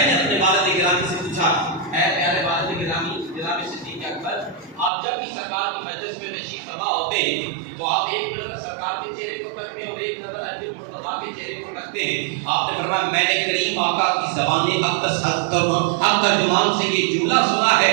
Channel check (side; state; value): left; drops out; at 4.9 s